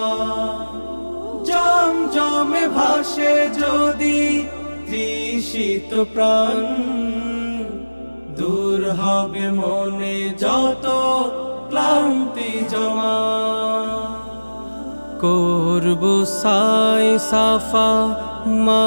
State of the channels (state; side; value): inverted; both; correlation -1.00